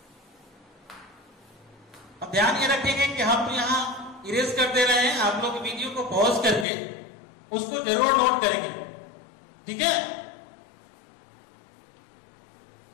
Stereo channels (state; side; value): drops out; right; at 6.7 s